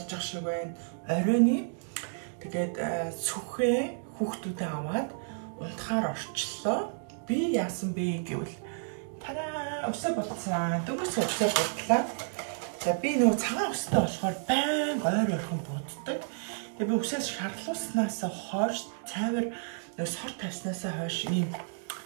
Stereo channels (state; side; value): silent; left; digital silence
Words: байгаа шиг байна. Оройны тэгээд сүхээ хүүхдүүдээ аваад унтахаар орчлоо. Би яасан бэ гэвэл тараа өсөө болцсон. Дөнгөж өсөө бодлаа. За би нөгөө цагаан өстэй болохоор байн ойр ойрхон буддаг. Тэгээ би өсөөс шарлууснаас хойш цайвар нөгөө сор тавьснаас хойш ийм